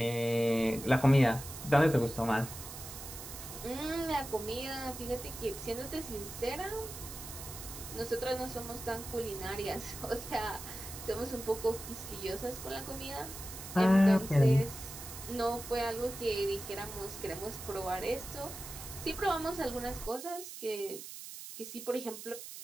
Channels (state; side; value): noise; right; hiss, 11 dB below the sound